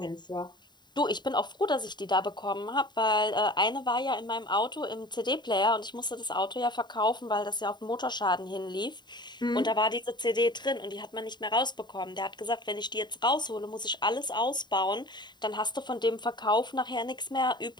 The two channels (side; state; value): right; late; 0.21 ms